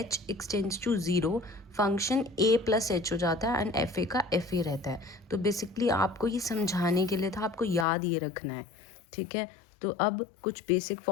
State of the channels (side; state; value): right; drops out; at 7.9 s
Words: extends to 0 function a plus h हो जाता है एंड एफ ए का एफ ए रहता है. तो बेसिकली आपको ये समझाने के लिए था, आपको याद ये रखना है. ठीक है. तो अब कुछ बेसिक